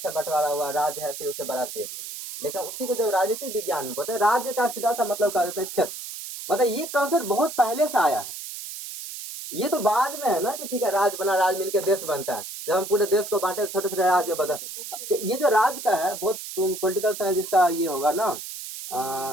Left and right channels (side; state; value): right; noise; hiss, 9 dB below the sound